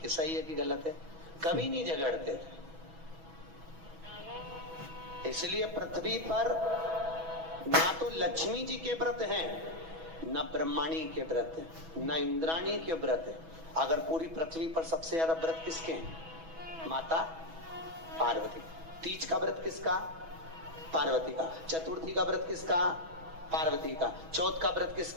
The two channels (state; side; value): late; left; 6.1 ms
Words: सही है कि गलत है? कभी नहीं झगड़ते थे। इसलिए पृथ्वी पर ना तो लक्ष्मी जी के व्रत हैं, न ब्रह्माणी के व्रत है, न इंद्राणी के व्रत है। अगर पूरी पृथ्वी पर सबसे ज्यादा व्रत किसके हैं? माता पार्वती। तीज का व्रत किसका? पार्वती का। चतुर्थी का व्रत किसका? पार्वती का। चौथ का व्रत